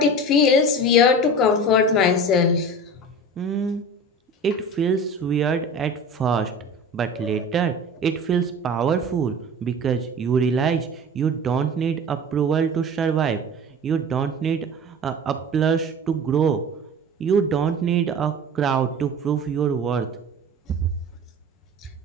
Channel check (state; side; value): normal; both; correlation 0.36